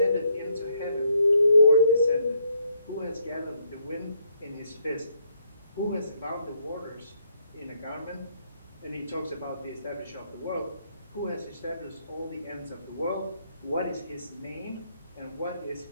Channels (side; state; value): both; inverted; correlation -0.72